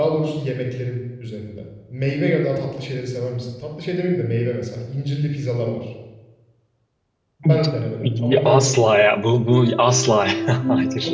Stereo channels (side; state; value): both; identical; correlation 1.00